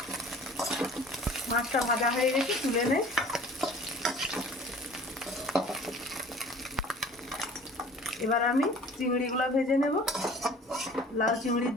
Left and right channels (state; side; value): normal; both; correlation 0.47